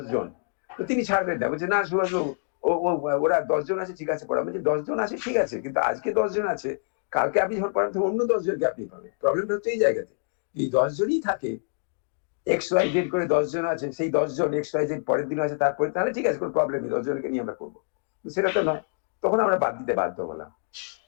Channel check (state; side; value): silent; right; digital silence